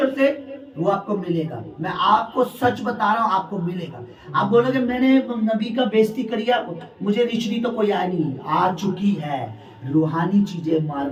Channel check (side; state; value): both; identical; correlation 1.00